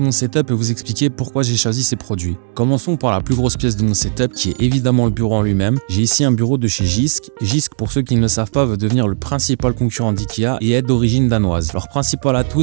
setup et vous expliquer pourquoi j'ai choisi ces produits. Commençons par la plus grosse pièce de mon setup qui est évidemment le bureau en lui-même. J'ai ici un bureau de chez Jysk. Jysk, pour ceux qui ne le savent pas, veut devenir le principal concurrent d'IKEA et est d'origine danoise. Leur principal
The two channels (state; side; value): silent; left; digital silence